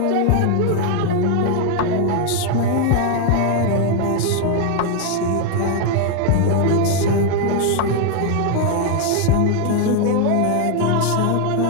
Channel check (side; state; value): both; different; correlation 0.01